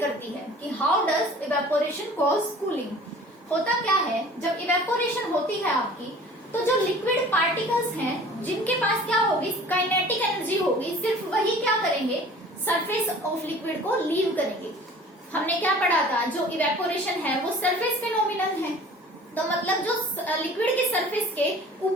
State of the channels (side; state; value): both; normal; correlation 0.46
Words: है, कि how does evaporation cause cooling. होता क्या है, जब इवेपोरेशन होती है आपकी, तो जो लिक्विड पार्टिकल्स हैं जिनके पास क्या होगी, काइनेटिक एनर्जी होगी, सिर्फ वही क्या करेंगे, सरफेस ऑफ लिक्विड को लीव करेंगे। हमने क्या पढ़ा था, जो इवेपोरेशन है वो सरफेस फिनोमिनन है। तो मतलब जो लिक्विड के सरफेस के